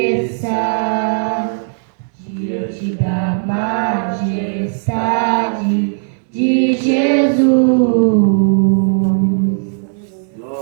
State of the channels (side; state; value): left; silent; digital silence